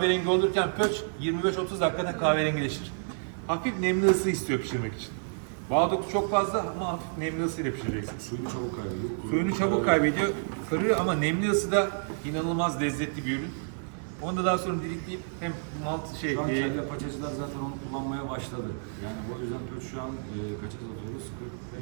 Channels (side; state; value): left; silent; 58 dB below the other